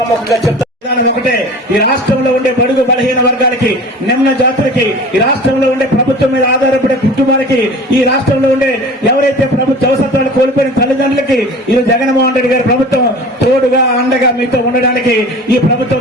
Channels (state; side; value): normal; both; correlation 0.39